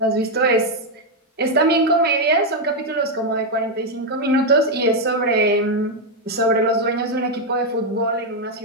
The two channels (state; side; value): normal; both; correlation 0.02